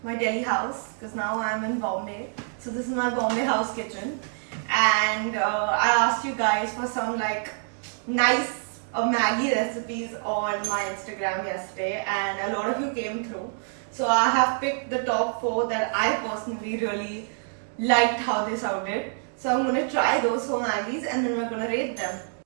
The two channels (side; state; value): left; silent; 61 dB below the other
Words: my Delhi house because now I'm in Bombay. So this is my Bombay house kitchen, and I asked you guys for some nice Maggi recipes on my Instagram yesterday, and a lot of you came through. So I have picked the top 4 that I personally really liked how they sounded. So I'm gonna try those 4 Maggies and then we're gonna rate them.